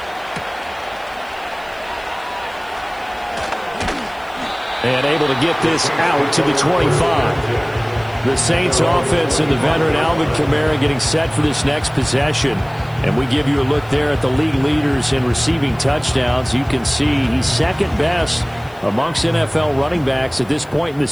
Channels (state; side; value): noise; left; hiss, 28 dB below the sound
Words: And able to get this out to the 25. The Saints offense and the veteran Alvin Kamara getting set for this next possession. And we give you a look there at the league leaders in receiving touchdowns. You can see he's second best amongst NFL running backs at this point in the